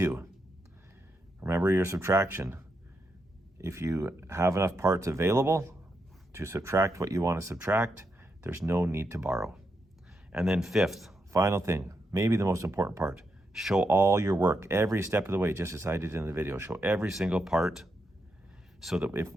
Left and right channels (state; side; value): normal; both; correlation 0.83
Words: Remember your subtraction. If you have enough parts available to subtract what you want to subtract, there's no need to borrow. And then fifth, final thing, maybe the most important part, show all your work every step of the way, just as I did in the video. Show every single part so that if